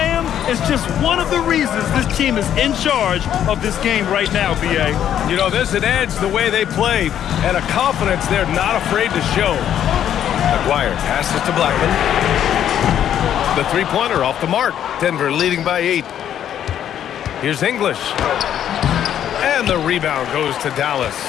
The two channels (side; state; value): right; quieter; 10.2 dB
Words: is just one of the reasons this team is in charge of this game right now, B.A. You know, there's an edge the way they play and a confidence they're not afraid to show. Aguirre passes to Blackman. The three-pointer off the mark. Denver leading by 8. Here's English. And the rebound goes to Dallas.